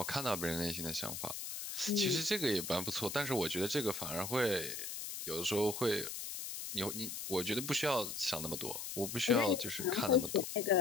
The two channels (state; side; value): noise; left; hiss, 6 dB below the sound